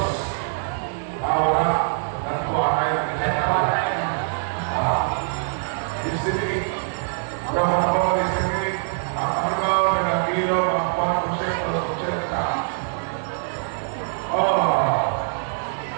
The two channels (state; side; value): silent; left; 63 dB below the other